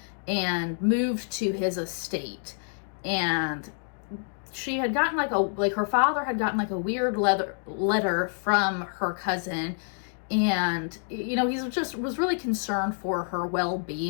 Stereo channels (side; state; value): right; silent; 60 dB below the other